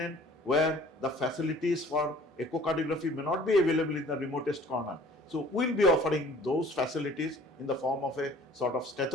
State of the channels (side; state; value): both; normal; correlation 0.52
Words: where the facilities for echocardiography may not be available in the remotest corner. So we will be offering those facilities in the form of a sort of